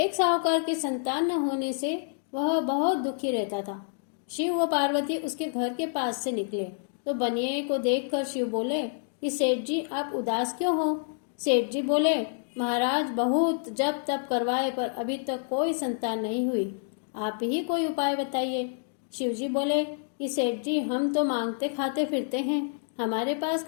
साहूकार की संतान न होने से वह बहुत दुखी रहता था। शिव व पार्वती उसके घर के पास से निकले तो बनिए को देखकर शिव बोले कि सेठ जी आप उदास क्यों हो। सेठ जी बोले महाराज बहुत जप तप करवाए पर अभी तक कोई संतान नहीं हुई, आप ही कोई उपाय बताइए। शिव जी बोले कि सेठ जी हम तो मांगते खाते फिरते हैं, हमारे पास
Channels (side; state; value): right; silent; digital silence